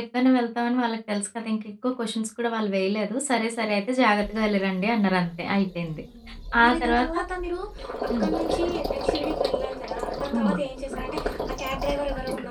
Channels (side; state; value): both; identical; correlation 1.00